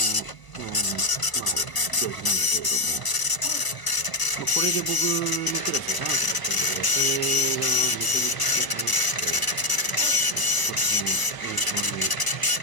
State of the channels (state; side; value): late; right; 1.0 ms